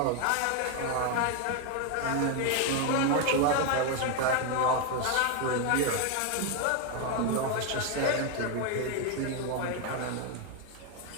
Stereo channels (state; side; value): different; both; correlation 0.01